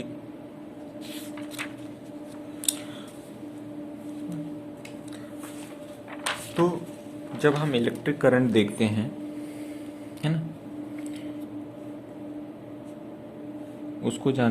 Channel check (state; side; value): identical; both; correlation 1.00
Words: तो जब हम इलेक्ट्रिक करंट देखते हैं, है ना, उसको